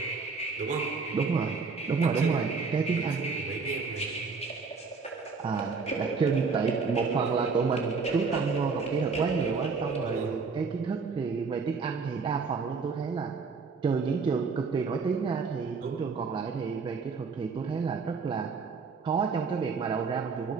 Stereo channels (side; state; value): left; quieter; 4.8 dB